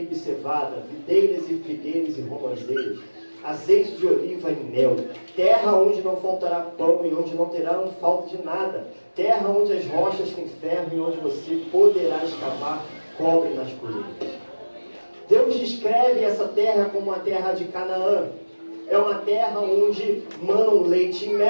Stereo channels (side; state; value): both; inverted; correlation -1.00